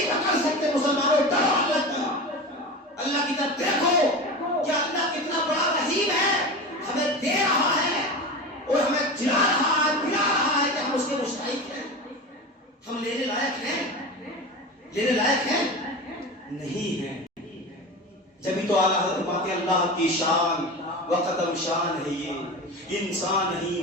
پکڑ سکتے۔ مسلمانوں ڈرو اللہ کی، اللہ کی طرف دیکھو کہ اللہ کتنا بڑا رحیم ہے، ہمیں دے رہا ہے اور ہمیں جلا رہا ہے، پلا رہا ہے کہ ہم اس کے مستحق ہیں۔ ہم لینے لائق ہیں؟ لینے لائق ہیں؟ نہیں ہیں۔ جبھی تو اعلیٰ حضرت بات اللہ کی شان و قدم شان ہے، یہ انسان نہیں،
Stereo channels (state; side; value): normal; both; correlation 0.28